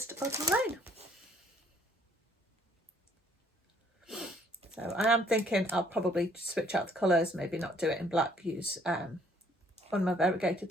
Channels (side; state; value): both; normal; correlation 0.63